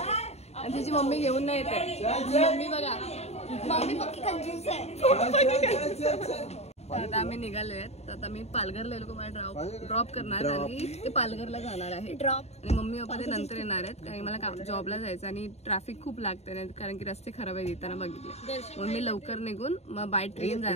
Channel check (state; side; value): late; right; 0.31 ms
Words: आणि तिची मम्मी घेऊन नाही येते. मम्मी बघा, मम्मी पक्की कंजूस आहे. आता आम्ही निघालोय. आता मी पालघरला लोक मला ड्रॉप करणार आणि ते पालघरला जाणार आहे ड्रॉप. आणि मम्मी पप्पा ते नंतर येणार आहेत कारण मला जॉबला जायचं आणि ट्रॅफिक खूप लागते कारण की रस्ते खराब आहेत येताना बघितले. म्हणून मी लवकर निघून मग बाय ट्रेन